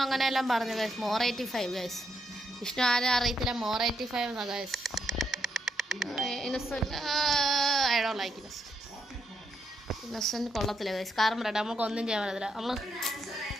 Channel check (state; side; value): normal; both; correlation 0.79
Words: അങ്ങനെയെല്ലാം പറഞ്ഞു ഗൈസ്. More 85 guys. വിഷ്ണു ആരും അറിയത്തില്ല, മോർ 85 എന്നാ guys. Innocent I don't like Innocent കൊള്ളത്തില്ല ഗൈസ്. കാരണം പറയട്ടെ, നമുക്ക് ഒന്നും ചെയ്യാൻ പറ്റത്തില്ല. നമ്മൾ